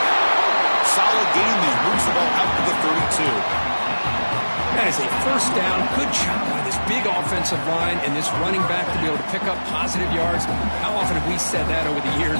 Solid gain there. Moves the ball out to the 32. That is a first down. Good job by this big offensive line and this running back to be able to pick up positive yards. How often have we said that over the years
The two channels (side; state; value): both; inverted; correlation -1.00